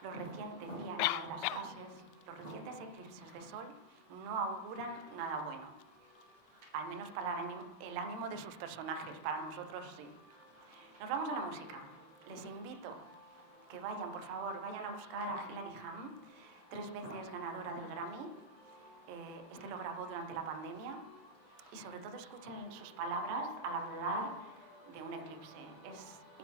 Decía en una de las frases, los recientes eclipses de sol no auguran nada bueno, al menos para el ánimo de sus personajes, para nosotros sí. Nos vamos a la música. Les invito que vayan, por favor, vayan a buscar a Hilary Hahn, 3 veces ganadora del Grammy. Este lo grabó durante la pandemia y sobre todo escuchen sus palabras al hablar de un eclipse. Es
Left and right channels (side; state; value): left; late; 5.4 ms